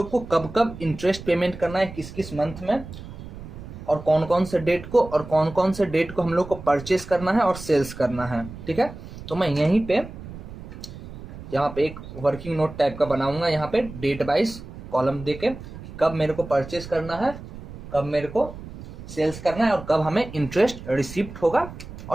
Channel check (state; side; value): noise; right; rumble, 13 dB below the sound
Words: को कब कब इंटरेस्ट पेमेंट करना है, किस किस मंथ में, और कौन कौन से डेट को, और कौन कौन से डेट को हम लोग को परचेस करना है और सेल्स करना है। ठीक है, तो मैं यहीं पे यहाँ पे एक वर्किंग नोट टाइप का बनाऊंगा, यहाँ पे डेट वाइज कॉलम देके कब मेरे को परचेस करना है, कब मेरे को सेल्स करना है, और कब हमें इंटरेस्ट रिसिप्ट होगा